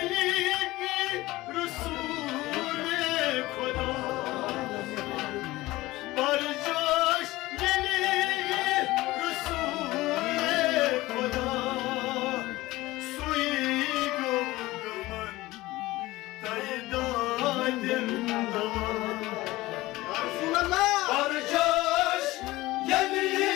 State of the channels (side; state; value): right; quieter; 18.6 dB